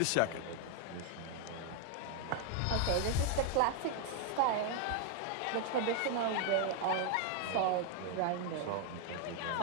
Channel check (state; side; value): different; both; correlation 0.00